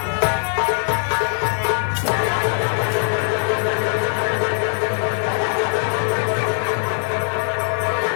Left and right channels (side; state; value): right; silent; 55 dB below the other